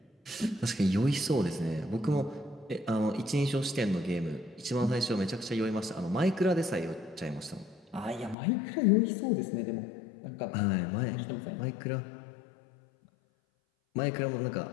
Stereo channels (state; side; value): drops out; right; at 8.3 s